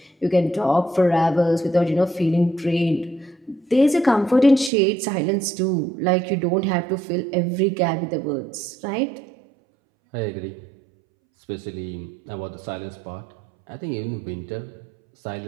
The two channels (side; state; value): left; drops out; at 4.7 s